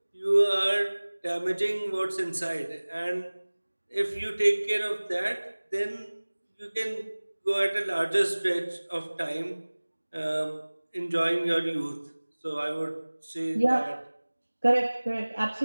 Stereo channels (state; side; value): inverted; both; correlation -1.00